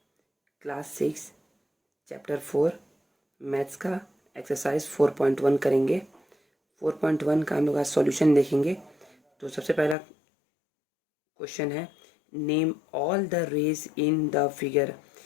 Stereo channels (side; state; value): right; drops out; at 10.0 s